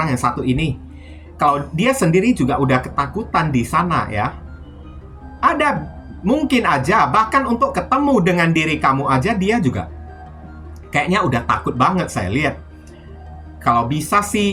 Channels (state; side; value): identical; both; correlation 1.00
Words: yang satu ini. Kalau dia sendiri juga udah ketakutan di sana ya. Ada mungkin aja bahkan untuk ketemu dengan diri kamu aja dia juga kayaknya udah takut banget saya lihat. Kalau bisa